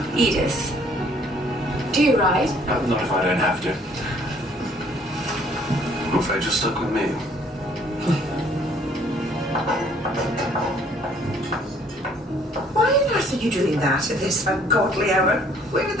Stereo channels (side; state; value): both; normal; correlation 0.60